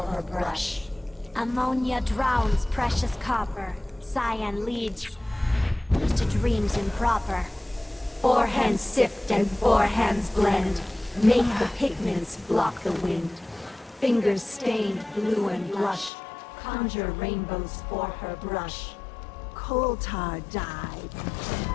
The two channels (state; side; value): drops out; right; at 16.1 s